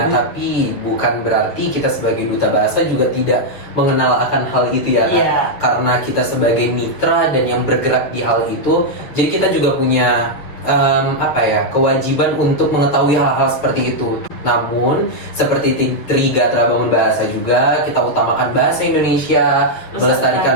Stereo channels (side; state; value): right; late; 6.9 ms